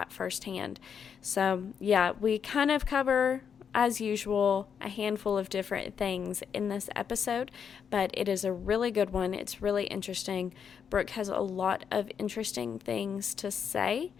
firsthand. So yeah, we kind of cover, as usual, a handful of different things in this episode, but it is a really good one. It's really interesting. Brooke has a lot of interesting things to say,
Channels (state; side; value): quieter; right; 7.2 dB